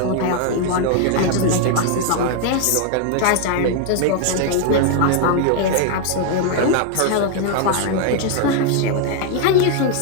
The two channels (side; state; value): both; different; correlation 0.00